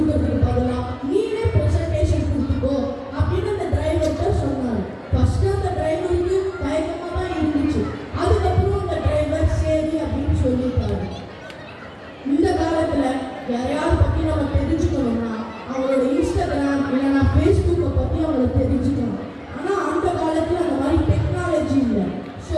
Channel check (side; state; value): both; identical; correlation 1.00